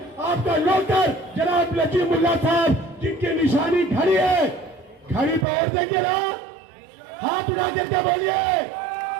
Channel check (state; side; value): drops out; left; at 5.5 s